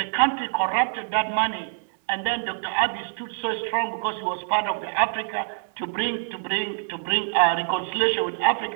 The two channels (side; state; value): left; silent; digital silence